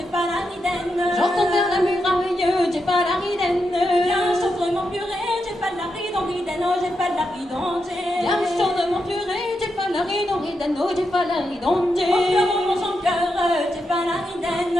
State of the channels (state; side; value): normal; both; correlation 0.85